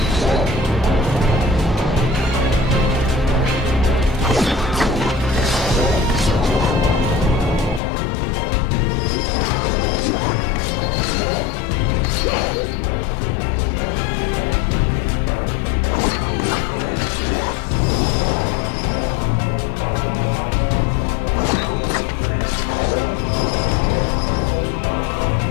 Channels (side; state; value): right; drops out; at 7.8 s